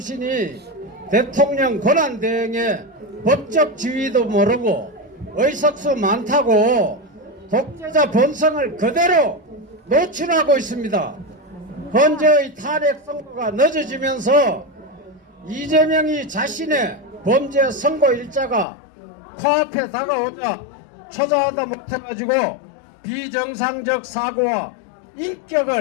대통령 권한 대행의 법적 지위도 모르고 의석수 많다고 독재자 본성을 그대로 노출하고 있습니다. 현재의 탄핵 선고가 늦어지면서 이재명이 자신의 범죄 선고 일자가 코앞에 다가오자 초자하다 못해가지고 비정상적 사고와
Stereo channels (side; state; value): right; drops out; at 18.7 s